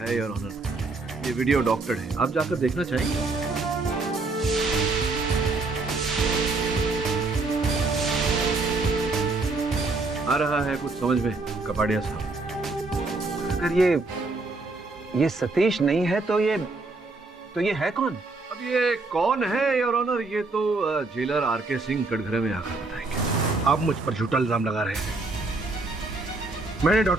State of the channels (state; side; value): quieter; left; 3.5 dB